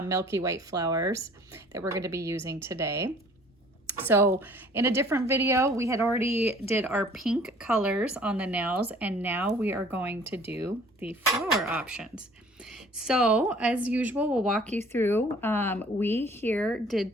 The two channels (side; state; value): both; normal; correlation 0.53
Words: Milky White flowers that we're going to be using today. So in a different video, we had already did our pink colors on the nails, and now we are going to do the flower options. So as usual, we'll walk you through. We here did